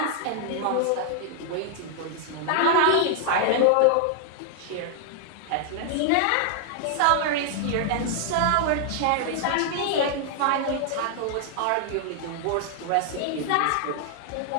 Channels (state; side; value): different; both; correlation 0.00